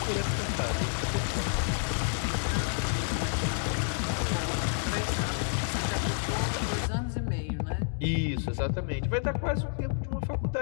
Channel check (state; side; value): silent; right; digital silence